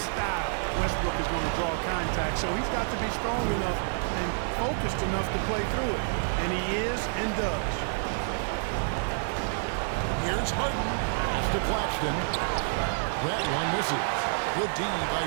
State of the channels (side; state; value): left; silent; digital silence